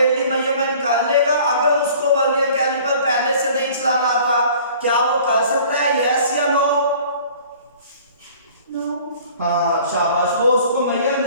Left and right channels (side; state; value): both; inverted; correlation -0.50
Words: मेजरमेंट कर लेगा? अगर उसको वर्नियर कैलिपर पहले से नहीं चलाना आता क्या वो कर सकता है? यस या नो? नो। हाँ शाबाश, वो उसको मेजर